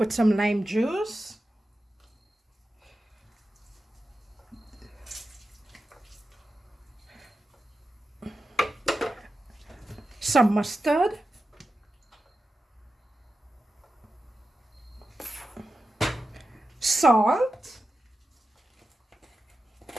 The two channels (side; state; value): both; normal; correlation 0.92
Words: some lime juice. Some mustard. Salt.